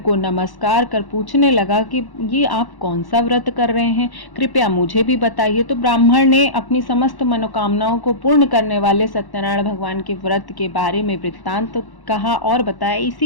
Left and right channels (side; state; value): right; late; 1.1 ms